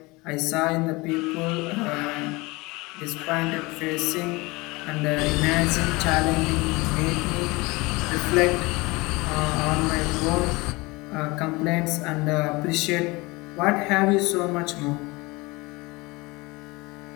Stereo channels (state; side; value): quieter; right; 23.8 dB